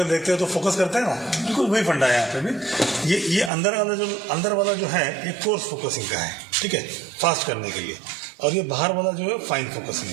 देखते हो तो फोकस करते हैं ना, बिल्कुल वही फंडा है यहाँ पे भी। ये अंदर वाला जो है ये कोर्स फोकसिंग का है, ठीक है, फास्ट करने के लिए। और ये बाहर वाला जो है फाइन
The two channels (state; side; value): drops out; left; at 3.5 s